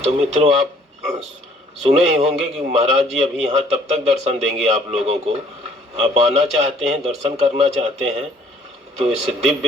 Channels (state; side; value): normal; both; correlation 0.59